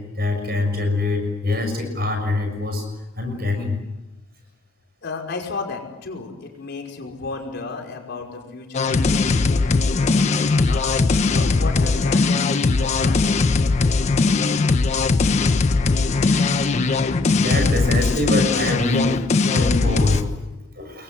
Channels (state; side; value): quieter; right; 3.2 dB